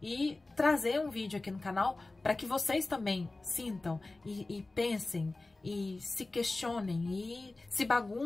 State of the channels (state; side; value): quieter; right; 3.1 dB